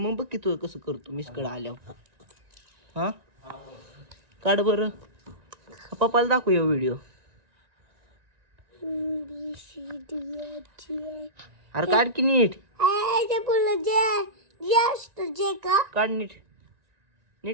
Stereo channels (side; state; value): left; late; 1.9 ms